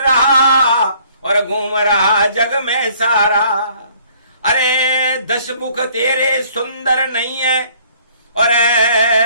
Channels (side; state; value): both; inverted; correlation -0.59